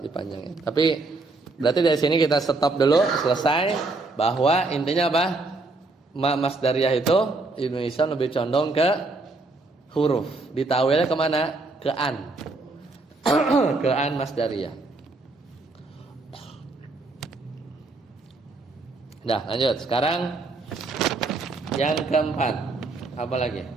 Tapi berarti dari sini kita stop dulu, selesai. Bahwa intinya apa? Masdariyah itu Ibnu Hisam lebih condong ke huruf. Ditawilnya kemana? Ke an. Ke an masdariyah. Nah lanjut. Sekarang Yang keempat, apa lagi?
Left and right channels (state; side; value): quieter; left; 3.4 dB